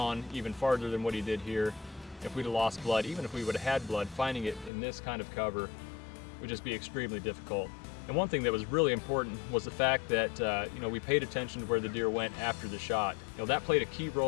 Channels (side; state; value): right; drops out; at 4.7 s